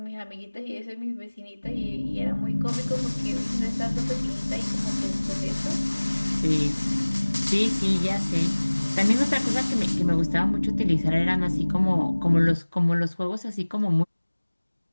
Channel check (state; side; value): inverted; both; correlation -1.00